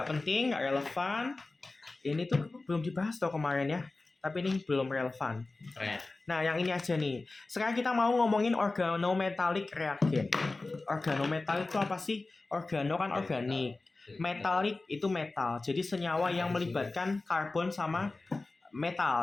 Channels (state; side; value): quieter; right; 3.3 dB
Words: penting, nggak relevan. Ini tuh belum dibahas tuh kemarin ya. Tapi ini belum relevan. Nah, yang ini aja nih. Sekarang kita mau ngomongin organometalik reagen. Organometalik itu apa sih? Organo kan organik. Metalik itu metal. Jadi senyawa yang melibatkan karbon sama